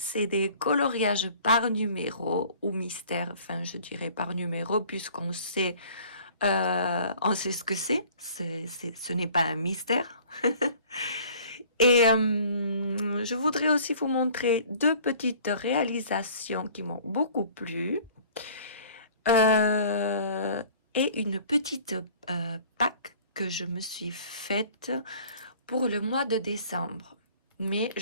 des coloriages par numéro ou mystère, enfin je dirais par numéro puisqu'on sait, on sait ce que c'est. Ce n'est pas un mystère. Et je voudrais aussi vous montrer deux petites réalisations qui m'ont beaucoup plu. Et une petite pack que je me suis faite pour le mois de décembre. Mais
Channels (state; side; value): inverted; both; correlation -0.51